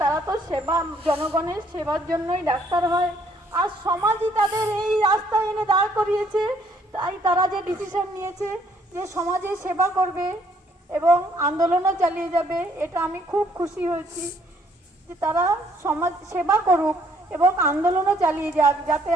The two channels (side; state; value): both; normal; correlation 0.66